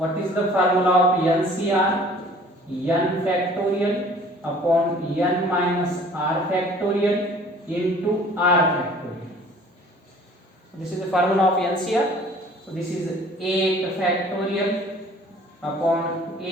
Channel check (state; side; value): normal; both; correlation 0.51